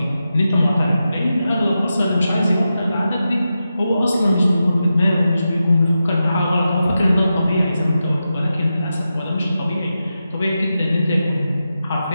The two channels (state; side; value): inverted; both; correlation -0.90